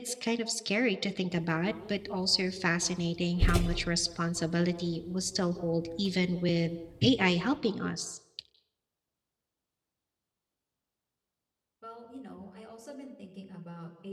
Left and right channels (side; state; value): both; identical; correlation 1.00